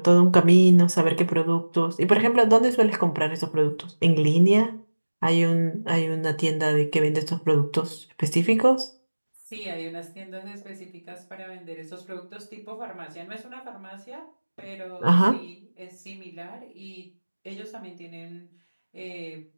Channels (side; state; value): both; inverted; correlation -1.00